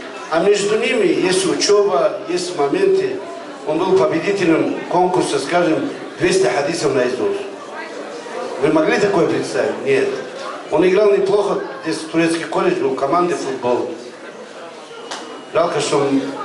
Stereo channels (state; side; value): identical; both; correlation 1.00